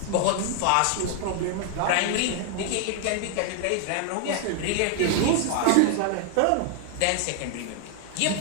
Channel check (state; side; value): different; both; correlation 0.00